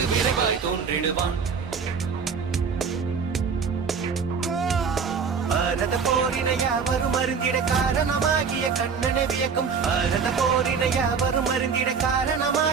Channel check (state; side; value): quieter; left; 5.9 dB